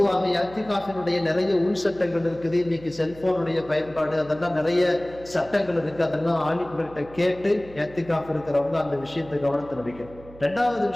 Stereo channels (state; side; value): noise; right; hum, 20 dB below the sound